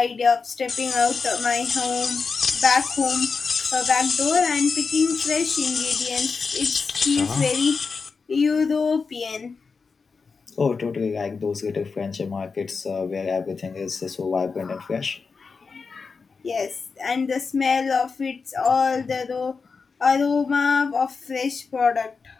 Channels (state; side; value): quieter; right; 4.9 dB